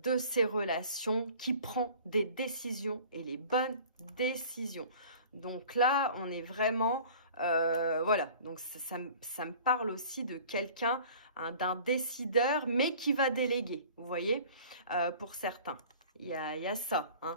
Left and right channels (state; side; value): inverted; both; correlation -0.46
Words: ses relations, qui prend des décisions et les bonnes décisions. Donc là, on est vraiment... voilà, donc ça me parle aussi de quelqu'un, hein, d'un décideur, mais qui va déléguer, vous voyez, pour certains. Il y a ça,